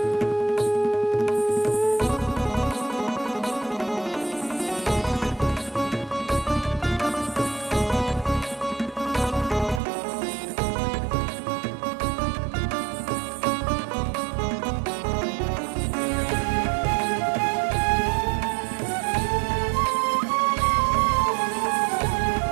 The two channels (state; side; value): drops out; left; at 9.8 s